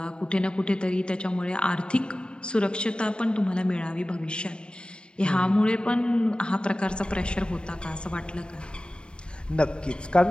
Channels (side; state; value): right; late; 0.051 ms